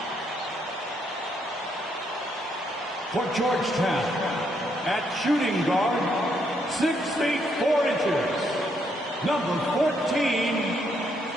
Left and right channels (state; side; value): normal; both; correlation 0.74